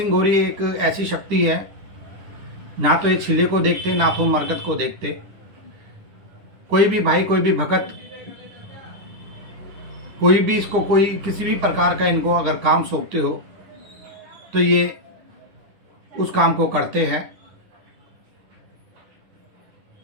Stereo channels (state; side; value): late; left; 10 ms